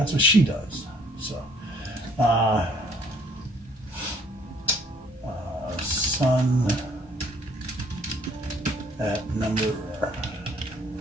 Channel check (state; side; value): normal; both; correlation 0.61